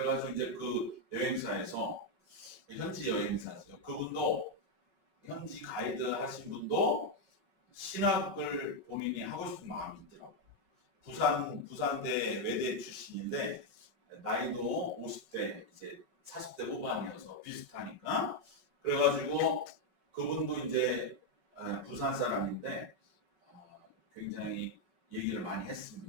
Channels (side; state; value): left; late; 5.3 ms